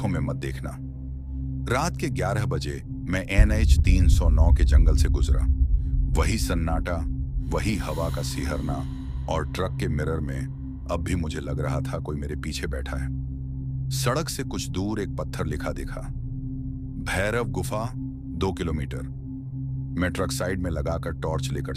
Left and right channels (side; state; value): both; identical; correlation 1.00